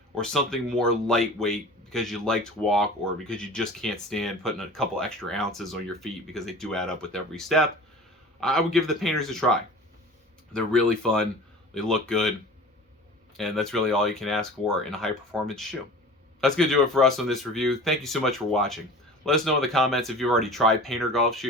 or something more lightweight because you like to walk or because you just can't stand putting a couple extra ounces on your feet because they do add up with every step, I would give the Payntrs a try. They're really fun. They look good. And that's really all you can ask for in a high-performance shoe. That's going to do it for us on this review. Thank you so much for watching. Let us know in the comments if you've already tried Payntr Golf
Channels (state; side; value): normal; both; correlation 0.39